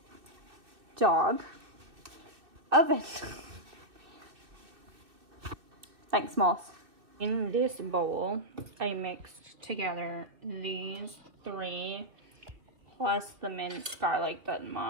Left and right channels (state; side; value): late; left; 2.6 ms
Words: Dog. Oven. Thanks, Moss. In this bowl, I mixed together these three plus the minced garlic that